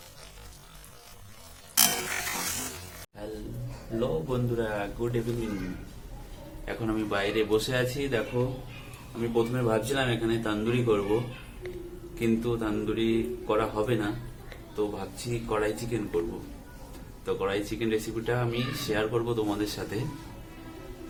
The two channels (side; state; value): both; identical; correlation 1.00